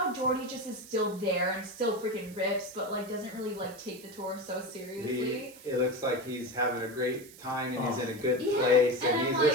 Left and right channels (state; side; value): noise; right; hiss, 20 dB below the sound